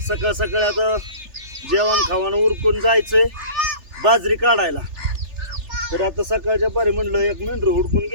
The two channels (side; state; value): left; late; 3.3 ms